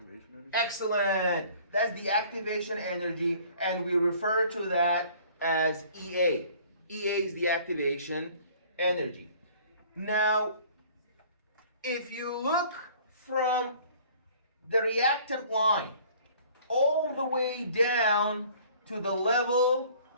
energy. Excellent. That's the activation energy, and we refer to that as EA. EA is the activation energy. Now, if you look from the reactant line all the way down to the level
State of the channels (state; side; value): inverted; both; correlation -0.53